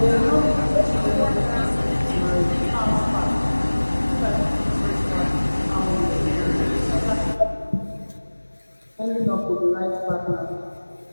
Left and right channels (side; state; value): both; inverted; correlation -1.00